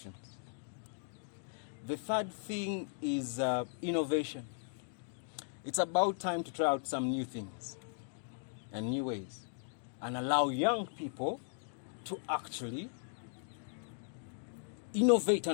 The third thing is innovation. It's about time to try out some new things and new ways and allow young people to actually innovate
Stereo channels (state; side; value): silent; right; digital silence